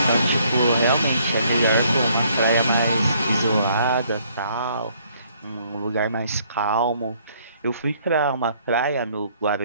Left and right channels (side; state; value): both; inverted; correlation -0.65